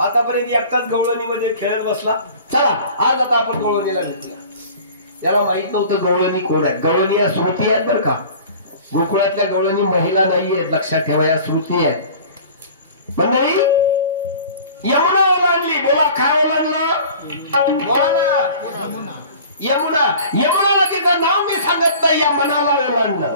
एकटाच गवळणीमध्ये खेळत बसला. चला आज आता आपण गवळणीला घेतला. याला माहित नव्हतं गवळणी कोण आहेत. गवळणी या श्रुती आहेत बरं का. गोकुळातल्या गवळणी महिला नाहीये लक्षात ठेवा. या श्रुती आहेत. मंडळी यमुना ओलांडली. बोला काय ओलांडलं? बोला ना. यमुना. यमुनाला तिचं नाव मी सांगत नाही. या मनाला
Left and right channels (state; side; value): inverted; both; correlation -0.44